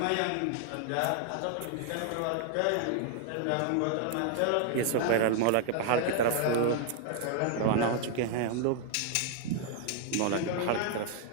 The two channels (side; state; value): both; different; correlation 0.00